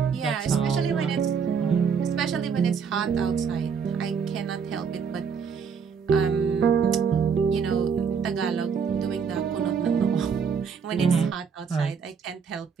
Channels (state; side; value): quieter; left; 6.3 dB